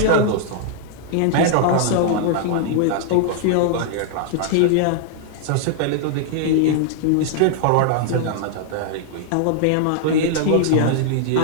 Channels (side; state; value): both; different; correlation -0.01